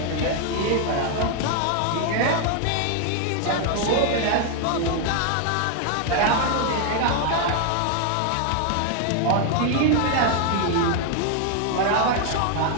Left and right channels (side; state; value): both; different; correlation 0.00